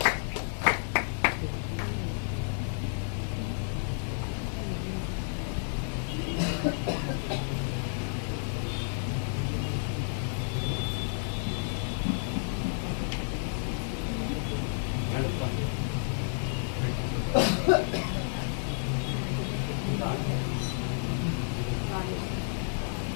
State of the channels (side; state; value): right; silent; digital silence